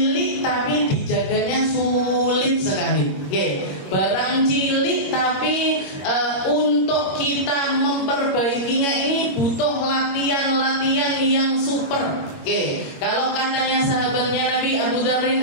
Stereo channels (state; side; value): late; right; 22 ms